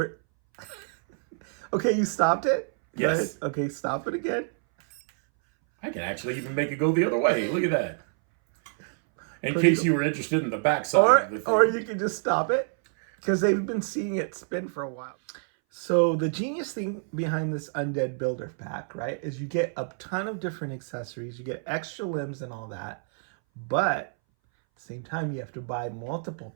Okay, you stopped it? Yes. Right? Okay, stop it again. I can actually even make it go the other way. Look at that. In case you were interested in the backside of the thing. Or you can just stop it, because they've been seeing it spin for a while. So the genius thing behind this Undead Builder pack, right, is you get a ton of different accessories. You get extra limbs and all that. But at the same time, you have to buy multiple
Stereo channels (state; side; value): silent; left; 60 dB below the other